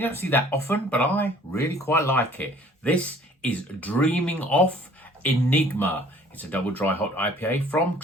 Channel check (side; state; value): both; normal; correlation 0.54